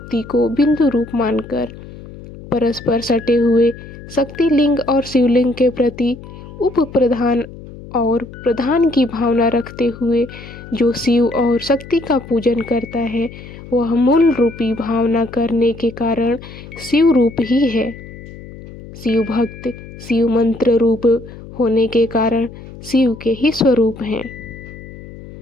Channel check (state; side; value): noise; left; hum, 16 dB below the sound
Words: को बिंदु रूप मानकर, परस्पर सटे हुए शक्ति लिंग और शिवलिंग के प्रति उप प्रधान और प्रधान की भावना रखते हुए जो शिव और शक्ति का पूजन करता है, वह मूल रूपी भावना करने के कारण शिव रूप ही है। शिव भक्त शिव मंत्र रूप होने के कारण शिव के ही स्वरूप हैं।